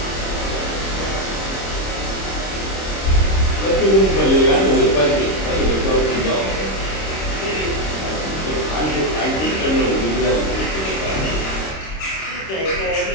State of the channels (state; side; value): late; right; 26 ms